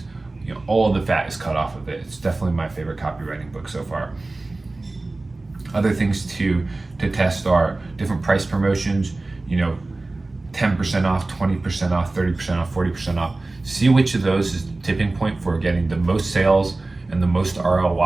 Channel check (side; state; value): left; quieter; 3.1 dB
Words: all of the fat is cut off of it. It's definitely my favorite copywriting book so far. Other things to test are different price promotions, 10% off, 20% off, 30% off, 40% off. See which of those is the tipping point for getting the most sales and the most